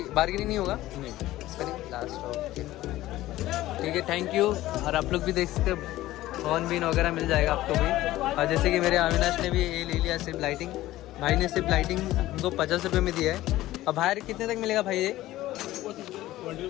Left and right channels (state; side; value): quieter; right; 15.9 dB